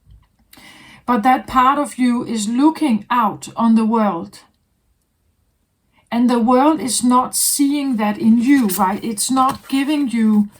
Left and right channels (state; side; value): identical; both; correlation 1.00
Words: But that part of you is looking out on the world. And the world is not seeing that in you, right? It's not giving you